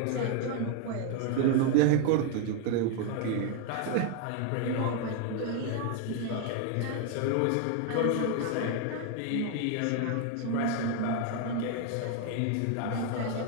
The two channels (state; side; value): different; both; correlation 0.01